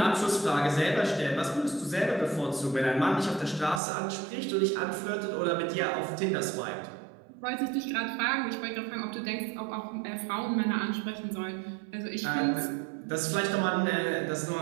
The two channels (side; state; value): left; drops out; at 3.8 s